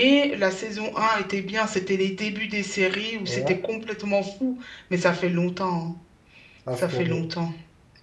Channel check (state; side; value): identical; both; correlation 1.00